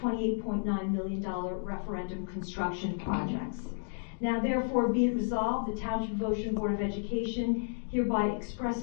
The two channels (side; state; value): right; silent; digital silence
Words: million referendum construction projects. Now therefore be it resolved, the Township of Ocean Board of Education hereby